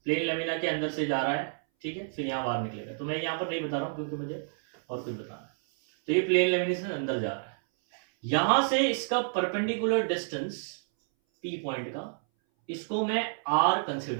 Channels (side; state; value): left; silent; 58 dB below the other